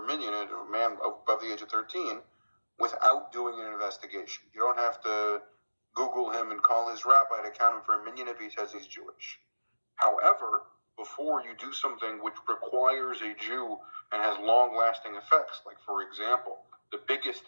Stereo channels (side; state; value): both; inverted; correlation -1.00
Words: minyan, a man above the age of 13, without doing an investigation. You don't have to Google him and call his rabbi to count him for a minyan if he says he's Jewish. However, before you do something which requires a Jew and has long-lasting effects, like, for example, the biggest